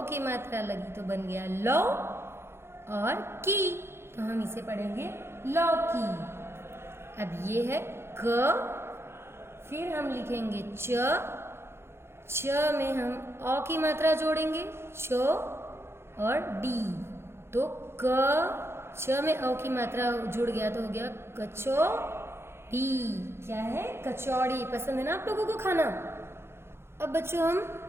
की मात्रा लगी तो बन गया लो और की, तो हम इसे पढ़ेंगे लौकी। अब ये है क, फिर हम लिखेंगे च, च में हम अ की मात्रा जोड़ेंगे, च और डी। तो क च में अ की मात्रा जुड़ गया तो हो गया कचौड़ी। क्या है? कचौड़ी। पसंद है ना आप लोगों को खाना? अब बच्चों हम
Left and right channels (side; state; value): left; late; 0.12 ms